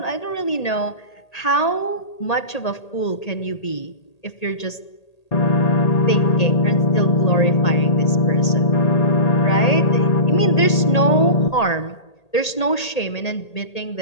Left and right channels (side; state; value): right; late; 1.8 ms